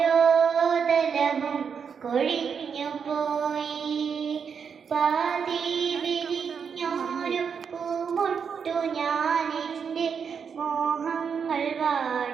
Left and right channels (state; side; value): quieter; left; 6.6 dB